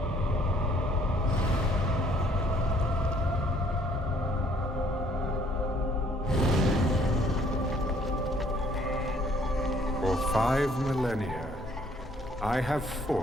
For 5 millennia, I have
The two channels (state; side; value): normal; both; correlation 0.62